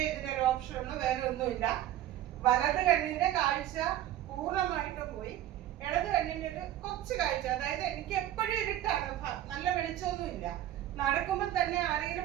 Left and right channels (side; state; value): left; quieter; 12.8 dB